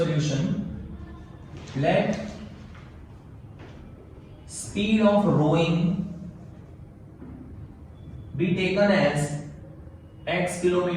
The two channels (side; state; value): both; identical; correlation 1.00